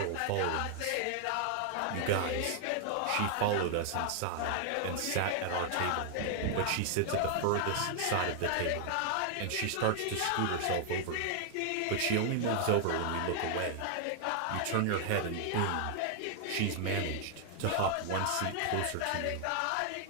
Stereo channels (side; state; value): both; different; correlation 0.00